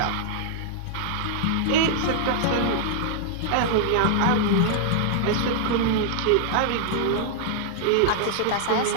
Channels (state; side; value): different; both; correlation -0.01